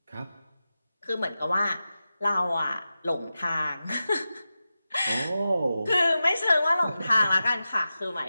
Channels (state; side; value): inverted; both; correlation -0.93